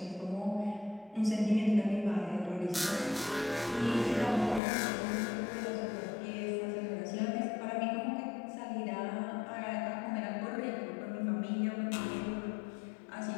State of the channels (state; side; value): drops out; right; at 4.6 s